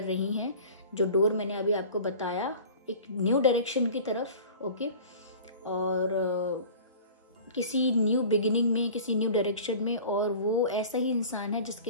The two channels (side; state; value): both; inverted; correlation -0.42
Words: रही हैं, जो डोर मैंने अभी आपको बताया, एक न्यू डायरेक्शन की तरफ। ओके, और किसी न्यू बिगिनिंग में, किसी न्यू डायरेक्शन में, और वो ऐसा ही इंसान है